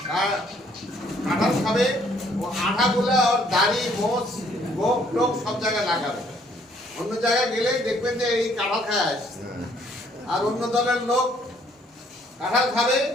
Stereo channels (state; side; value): normal; both; correlation 0.64